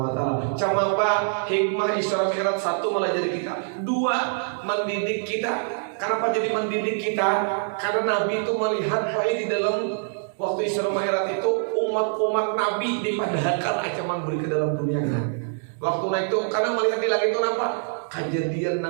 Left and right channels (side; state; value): left; silent; digital silence